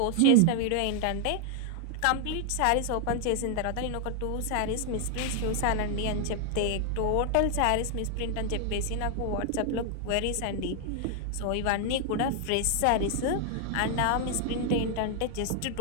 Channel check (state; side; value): different; both; correlation 0.00